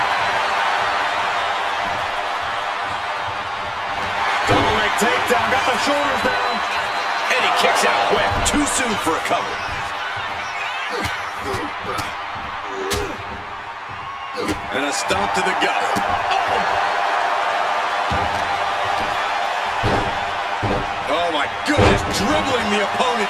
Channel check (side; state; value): both; identical; correlation 1.00